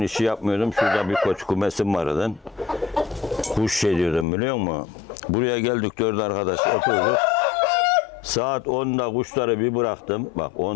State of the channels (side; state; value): right; drops out; at 4.2 s